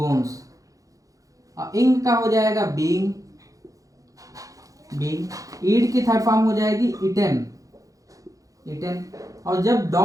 और इंग का हो जाएगा बीइंग, ईड की थर्ड फॉर्म हो जाएगी इटेन, और जब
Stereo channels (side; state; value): left; late; 0.17 ms